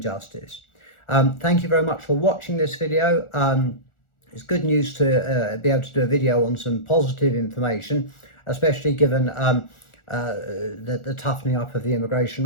Thank you very much for watching this video. It's good news to be able to do a video on some positive information, especially given the toughening up of the immigration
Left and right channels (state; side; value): late; right; 1.4 ms